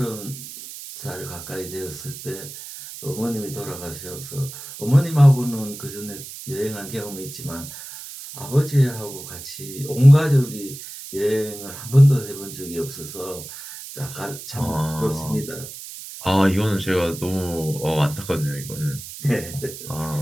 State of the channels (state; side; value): noise; right; hiss, 12 dB below the sound